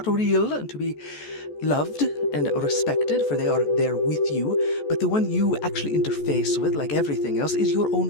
real and to be loved and respected, for they are there with you, but the one you actually interface with, like everything else, is your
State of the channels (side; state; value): right; late; 14 ms